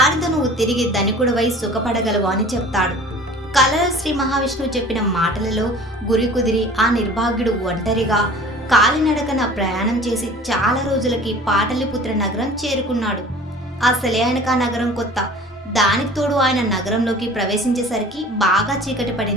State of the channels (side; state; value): both; normal; correlation 0.45